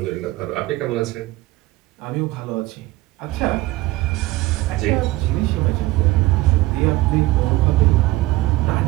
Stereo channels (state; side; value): quieter; left; 18.8 dB